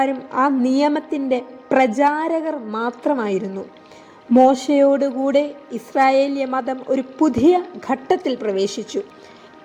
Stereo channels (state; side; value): identical; both; correlation 1.00